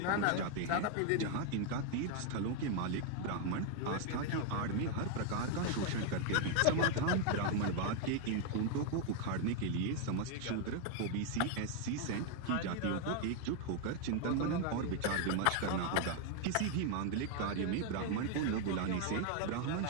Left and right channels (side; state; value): both; different; correlation 0.00